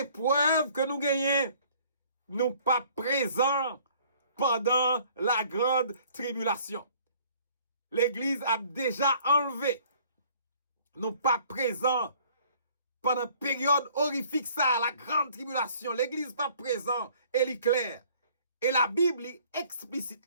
preuve que nous gagnons, nous pas présents pendant la grande tribulation. L'église a déjà enlevé, nous pas présents pendant une période horrifique ça, la grande tribulation. L'église pas présent, elle est claire. Et la Bible est explicite,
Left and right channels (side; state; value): both; inverted; correlation -0.56